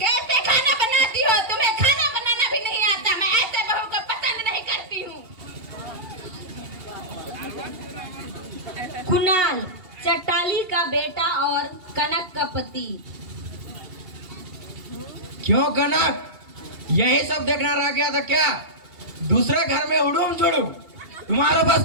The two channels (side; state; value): left; late; 2.8 ms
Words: खाना बनाती हो? तुम्हें खाना बनाना भी नहीं आता। मैं ऐसे बहू को पसंद नहीं करती हूँ। कुणाल, चट्टाली का बेटा और कनक का पति। क्यों कनक, यही सब देखना रह गया था क्या? दूसरे घर में उड़ूम जुड़ूम, तुम्हारे पास